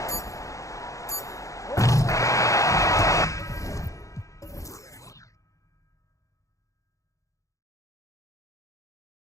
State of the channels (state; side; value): late; right; 0.16 ms